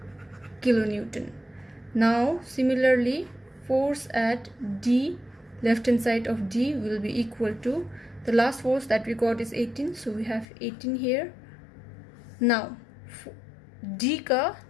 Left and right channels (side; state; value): right; drops out; at 10.5 s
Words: kilonewton. Now similarly force at D, left hand side of D will be equal to, the last force that we got is 18, so we have 18 here. Now D का